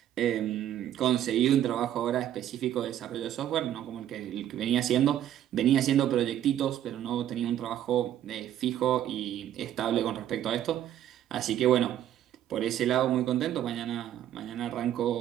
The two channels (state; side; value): quieter; left; 11.4 dB